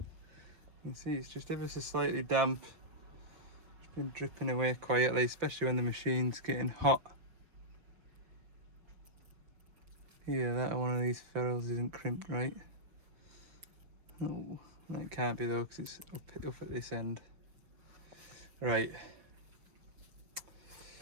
can see it's just ever so slightly damp. It's been dripping away quietly, especially when the machine's getting hot. Yeah, that one of these ferrules isn't crimped right. Oh, that can't be though, because it's up at this end. Right.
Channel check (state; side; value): late; left; 6.0 ms